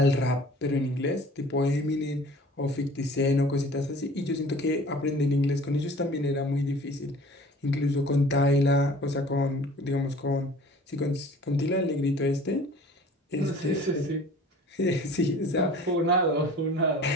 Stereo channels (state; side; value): normal; both; correlation 0.47